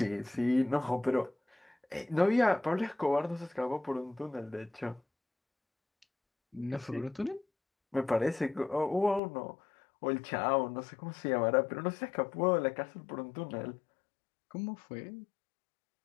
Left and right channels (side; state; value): right; drops out; at 9.2 s